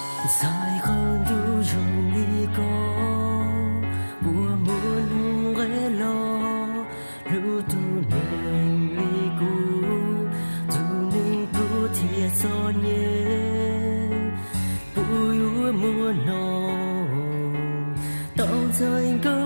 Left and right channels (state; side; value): inverted; both; correlation -1.00